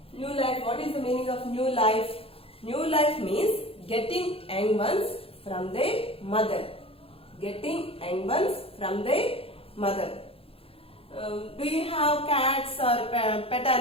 new life? What is the meaning of new life? New life means getting young ones from their mother. Getting young ones from their mother. Do you have cats or pet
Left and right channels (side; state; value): right; late; 0.27 ms